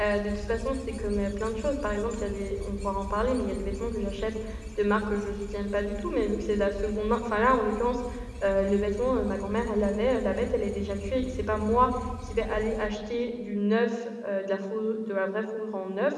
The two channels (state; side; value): identical; both; correlation 1.00